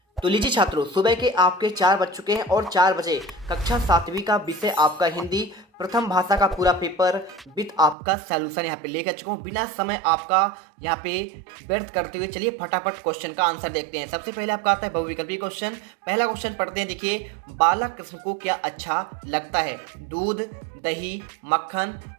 तो लीजिए छात्रों, सुबह के आपके 4 बज चुके हैं और 4 बजे कक्षा 7वीं का विषय आपका हिंदी प्रथम भाषा का पूरा पेपर विद आपका सॉल्यूशन यहाँ पे लेकर चुका हूँ। बिना समय आपका यहाँ पे व्यर्थ करते हुए चलिए फटाफट क्वेश्चन का आंसर देखते हैं। सबसे पहले आपका आता है बहुविकल्पी क्वेश्चन। पहला क्वेश्चन पढ़ते हैं। देखिए, बालक कृष्ण को क्या अच्छा लगता है? दूध, दही, मक्खन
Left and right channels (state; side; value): drops out; left; at 8.0 s